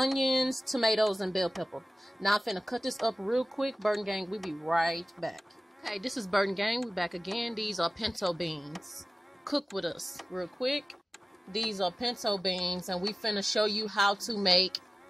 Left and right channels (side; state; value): both; normal; correlation 0.97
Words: tomatoes, and bell pepper. Now, I'm finna cut this up real quick. Burton gang, we'll be right back. Okay, this is Burton gang. We back again. These are pinto beans. Cook with us real quick. These are pinto beans, and we finna show you how to make